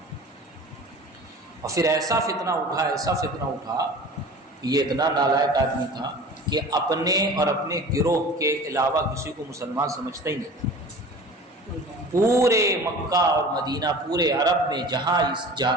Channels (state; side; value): normal; both; correlation 0.40